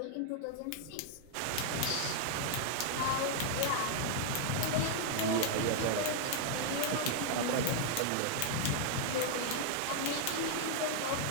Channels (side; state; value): both; different; correlation -0.01